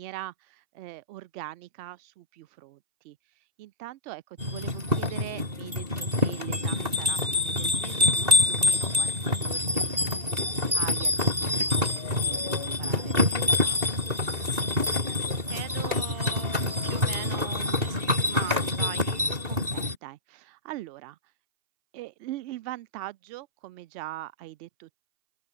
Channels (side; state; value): left; late; 2.7 ms